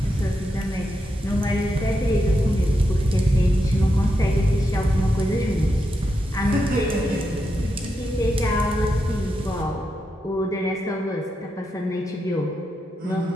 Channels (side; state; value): both; normal; correlation 0.85